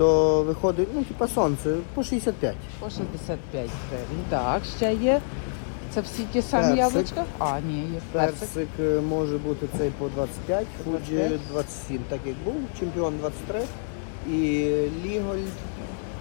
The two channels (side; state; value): right; silent; digital silence